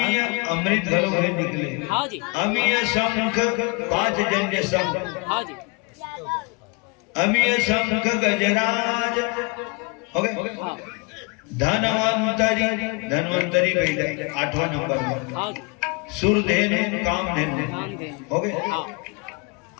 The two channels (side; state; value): right; quieter; 30.7 dB